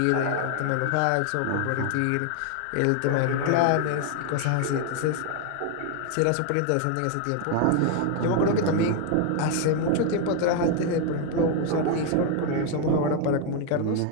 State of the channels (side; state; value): both; different; correlation 0.01